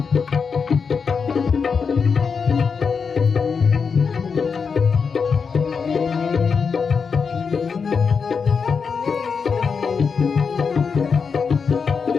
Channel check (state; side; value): quieter; right; 5.7 dB